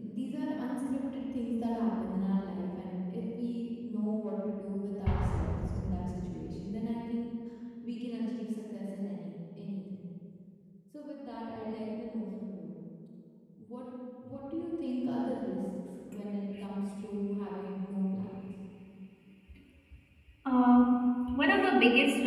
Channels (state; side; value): identical; both; correlation 1.00